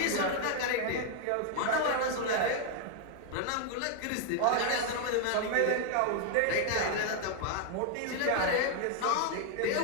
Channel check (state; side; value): different; both; correlation 0.00